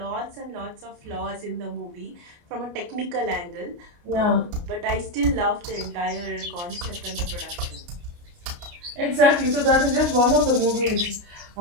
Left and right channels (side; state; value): left; late; 29 ms